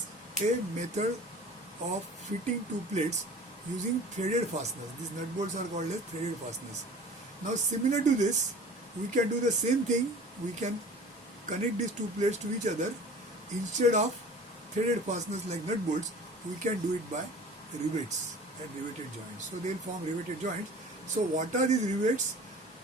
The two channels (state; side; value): normal; both; correlation 0.43